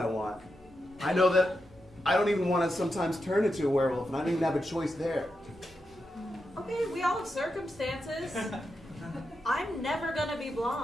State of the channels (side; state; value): both; normal; correlation 0.87